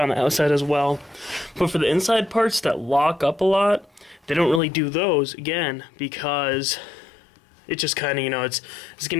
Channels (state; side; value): drops out; right; at 4.6 s